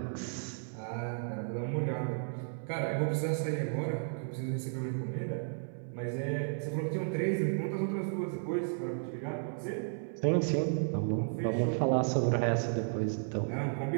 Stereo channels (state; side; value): silent; left; 55 dB below the other